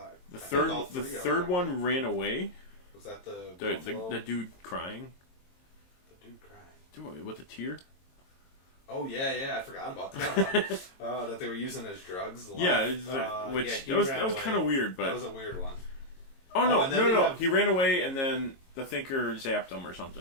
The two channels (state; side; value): late; right; 22 ms